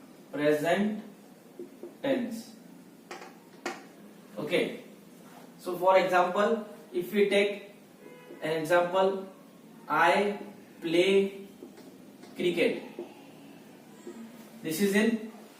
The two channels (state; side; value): identical; both; correlation 1.00